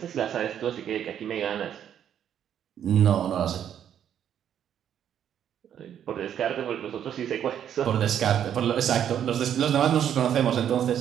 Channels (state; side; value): quieter; left; 9.6 dB